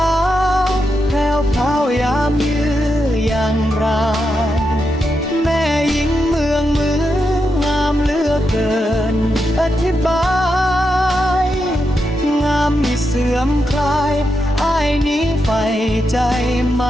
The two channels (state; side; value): normal; both; correlation 0.85